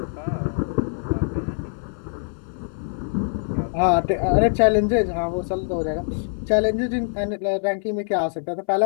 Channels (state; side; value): silent; right; 60 dB below the other